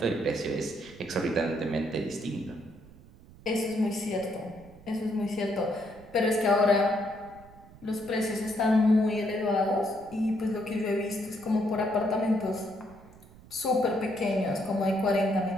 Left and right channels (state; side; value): noise; right; rumble, 22 dB below the sound